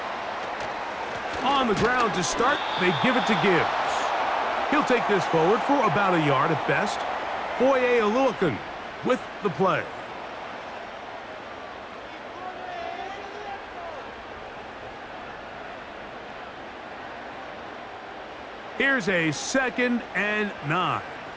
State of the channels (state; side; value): identical; both; correlation 1.00